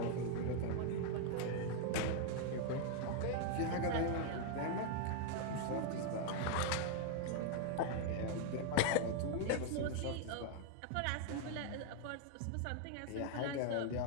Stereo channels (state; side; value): different; both; correlation 0.00